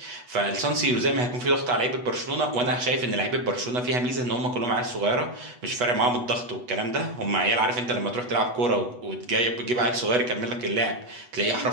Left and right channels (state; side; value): late; left; 8.1 ms